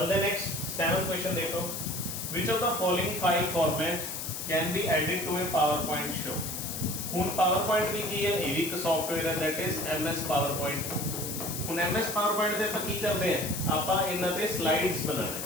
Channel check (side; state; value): left; noise; hiss, 5 dB below the sound